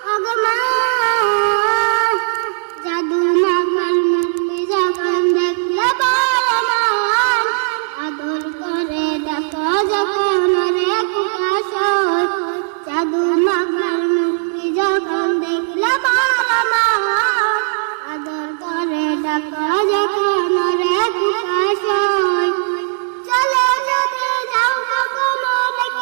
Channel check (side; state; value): left; silent; digital silence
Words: ওগো মা। জাদু মাখার মূর্তি যখন দেখলে আদর করে ডাকা যখন প্রকাশ হয়। জাদু মাখার মূর্তি যখন দেখলে